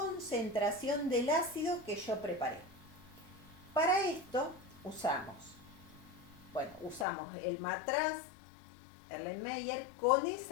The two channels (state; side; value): drops out; right; at 7.1 s